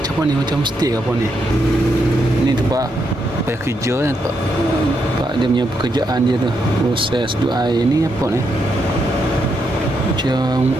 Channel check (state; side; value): normal; both; correlation 0.80